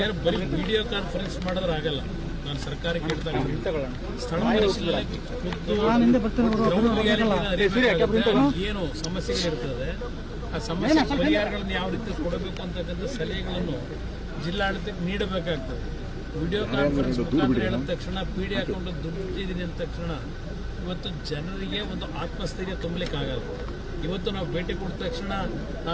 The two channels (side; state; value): both; identical; correlation 1.00